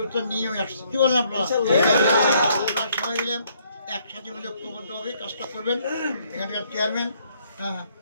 নিয়ে আমি আসছি। কী বলেন আপনারা? আপনারা সবাই মিলে একসাথে মিলে ঐক্যবদ্ধভাবে কাজটা করবেন। এখানকার চেয়ারম্যান, হ্যাঁ,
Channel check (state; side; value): inverted; both; correlation -0.67